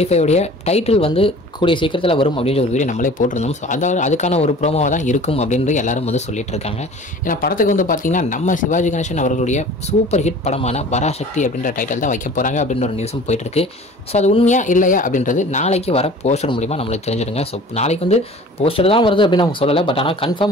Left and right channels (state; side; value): normal; both; correlation 0.44